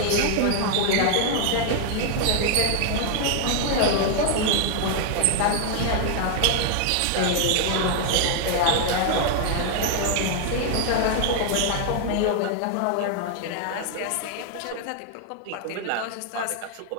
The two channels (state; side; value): different; both; correlation 0.00